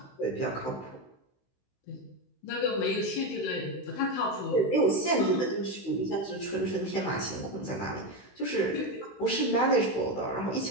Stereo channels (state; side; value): late; right; 16 ms